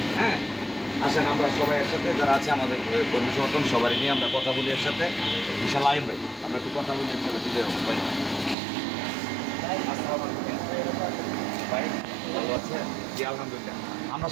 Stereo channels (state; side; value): drops out; left; at 8.6 s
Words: হ্যাঁ, আসেন আমরা সবাই একসাথে, যারা আছে আমাদের কর্মী সমর্থন সবাই নিয়ে আমরা কথা বলি একসাথে। ইনশাল্লাহ আইন ভাই, আমরা একটু কথা বলি একসাথে, দিলে ভাই। ভাই ভালো আছে? জি আলহামদুলিল্লাহ। আমরা